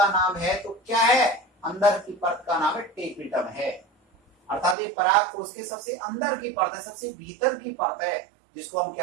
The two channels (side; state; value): left; drops out; at 4.8 s